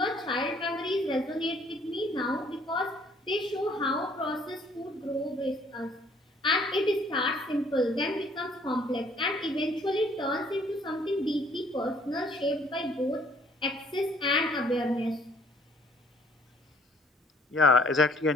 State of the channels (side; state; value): both; normal; correlation 0.60